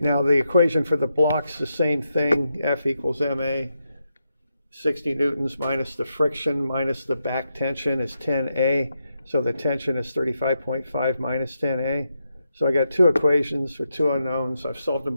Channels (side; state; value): both; inverted; correlation -0.84